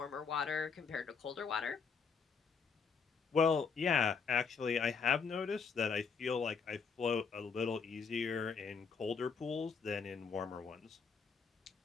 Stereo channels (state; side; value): quieter; right; 5.6 dB